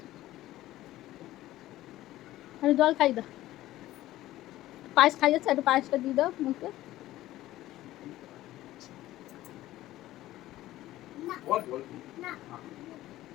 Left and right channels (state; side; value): quieter; right; 15.4 dB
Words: আরে জল খাই দাও, পায়েস খাই যাচ্ছে, একটু পায়েসটা দিয়ে দাও মুখে।